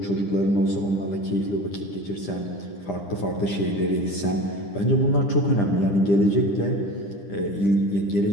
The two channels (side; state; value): right; late; 10 ms